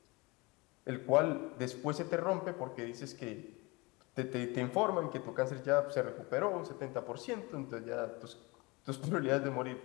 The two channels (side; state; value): right; quieter; 25.4 dB